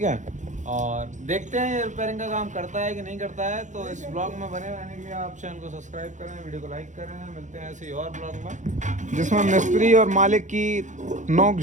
है? और देखते हैं ये रिपेयरिंग का काम करता है कि नहीं करता है। तो इस ब्लॉग में बने रहने के लिए आप चैनल को सब्सक्राइब करें, वीडियो को लाइक करें। मिलते हैं ऐसे ही और ब्लॉग में, जिसमें मिस्त्री और मालिक की नोक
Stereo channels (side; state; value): left; late; 0.35 ms